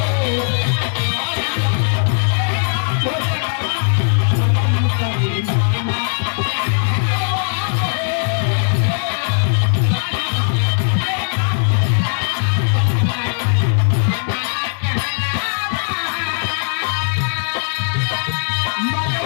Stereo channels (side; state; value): right; silent; digital silence